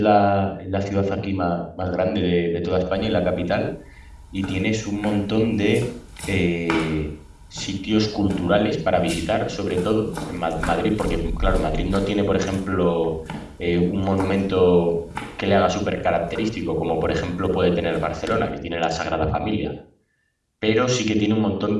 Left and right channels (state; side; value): identical; both; correlation 1.00